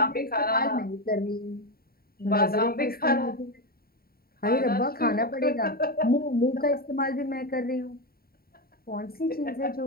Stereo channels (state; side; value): late; right; 0.43 ms